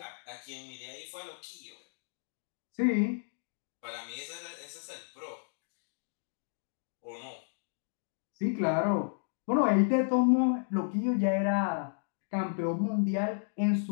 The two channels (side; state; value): right; silent; digital silence